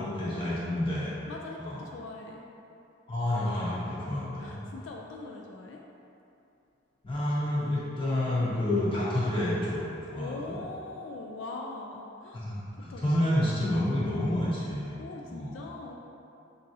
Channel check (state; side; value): normal; both; correlation 0.78